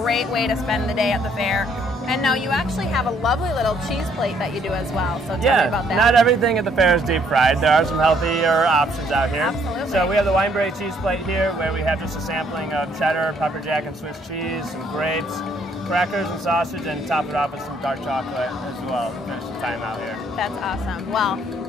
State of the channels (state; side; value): normal; both; correlation 0.66